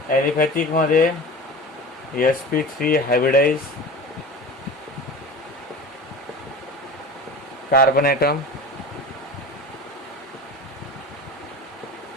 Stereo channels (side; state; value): both; normal; correlation 0.34